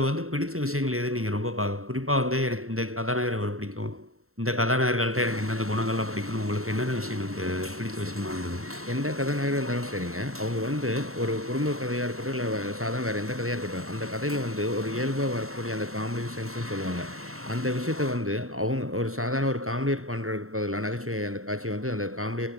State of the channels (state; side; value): late; left; 0.63 ms